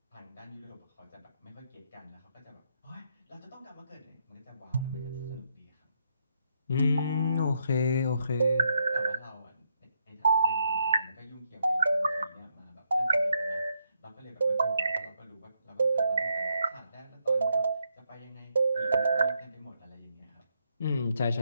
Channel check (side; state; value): both; inverted; correlation -0.78